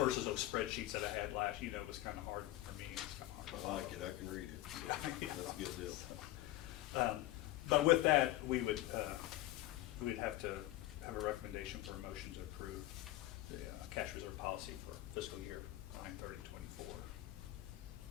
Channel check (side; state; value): right; quieter; 15.7 dB